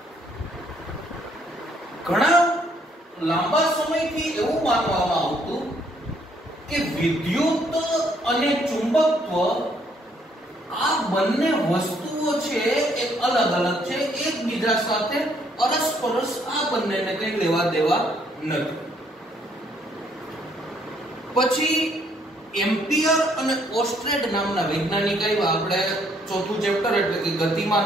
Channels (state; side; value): normal; both; correlation 0.68